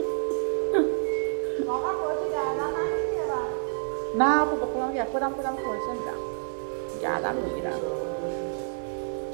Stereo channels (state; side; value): silent; left; digital silence